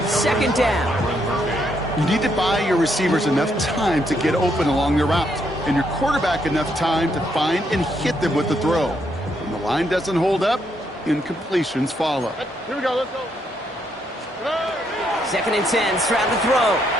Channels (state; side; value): normal; both; correlation 0.75